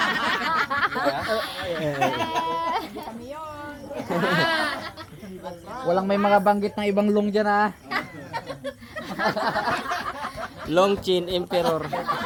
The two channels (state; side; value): identical; both; correlation 1.00